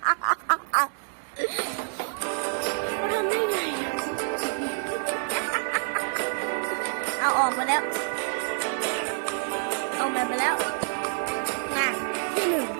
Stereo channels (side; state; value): left; silent; digital silence